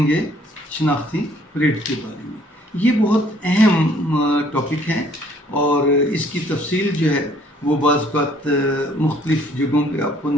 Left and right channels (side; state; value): both; normal; correlation 0.61